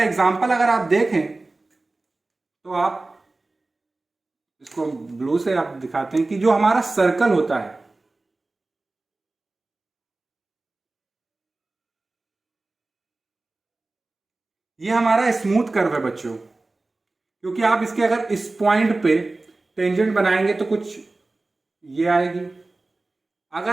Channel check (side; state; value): left; quieter; 3.2 dB